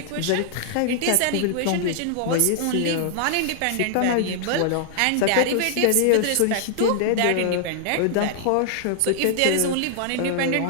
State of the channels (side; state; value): both; different; correlation -0.01